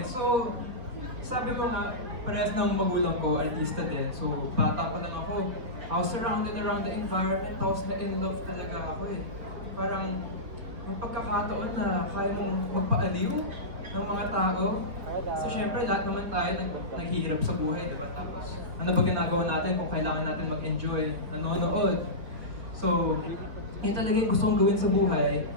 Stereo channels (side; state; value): left; late; 4.3 ms